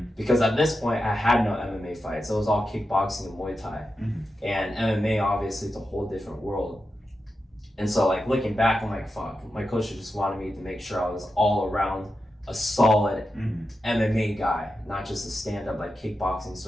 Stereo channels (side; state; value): both; normal; correlation 0.89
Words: Because at this point, I had no MMA fights. It was all kickboxing and Muay Thai. Mm-hmm. And MMA, obviously, is a whole different world. And so, like, looking back, I'm like, fuck, my coach just wanted me to make sure I was all around a solid MMA guy, not just a stand-up, like, kickboxing